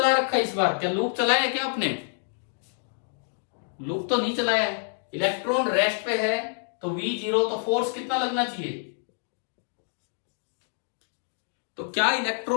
रखा है इस बार? क्या लूप चलाया है क्या आपने? लूप तो नहीं चलाया है, इलेक्ट्रॉन रेस्ट पे है तो V0, तो फोर्स कितना लगना चाहिए? तो क्या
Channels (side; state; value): right; silent; digital silence